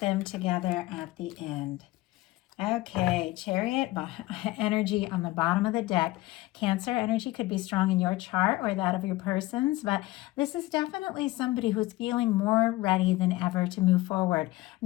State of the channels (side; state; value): right; quieter; 18.9 dB